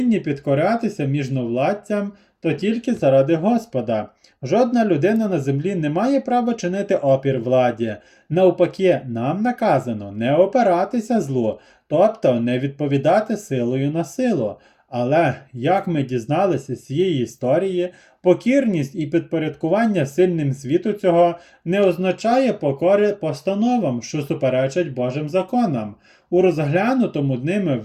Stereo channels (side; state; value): both; identical; correlation 1.00